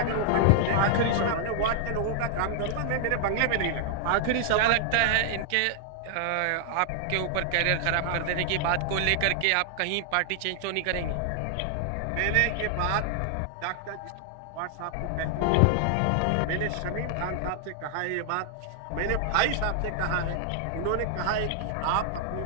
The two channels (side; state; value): both; different; correlation 0.00